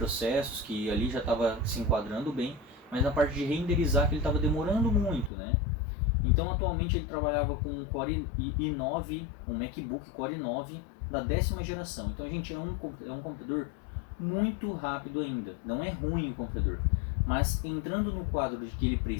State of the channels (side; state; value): right; drops out; at 5.3 s